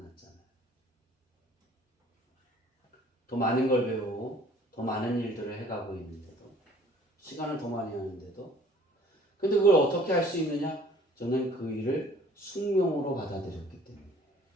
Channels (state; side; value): normal; both; correlation 0.54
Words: 더 많은 걸 배우고 더 많은 일들을 해가고 있는데도 시간을 더 많이 하는데도 근데 그걸 어떻게 할 수 있느냐? 저는 그 일을 숙명으로 받아들였기 때문에